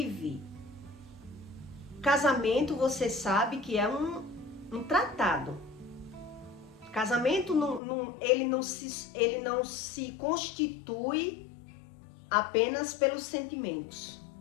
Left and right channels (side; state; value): right; drops out; at 7.8 s